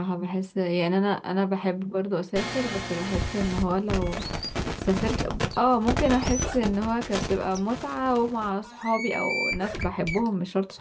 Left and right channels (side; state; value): both; identical; correlation 1.00